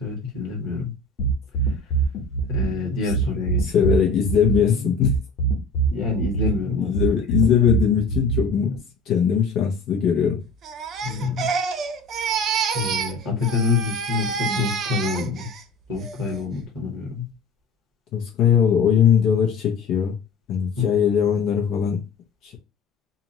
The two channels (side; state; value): right; quieter; 3.8 dB